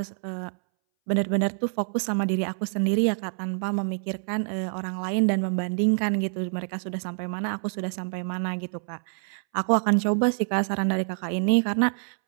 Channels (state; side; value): silent; left; 61 dB below the other